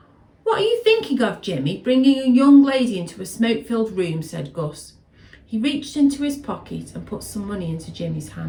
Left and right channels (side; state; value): both; identical; correlation 1.00